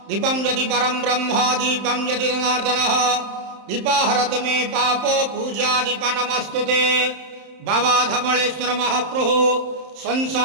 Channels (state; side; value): late; left; 31 ms